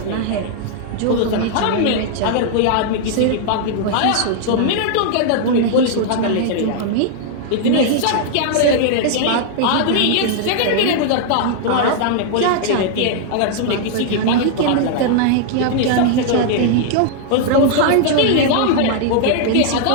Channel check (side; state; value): both; different; correlation -0.01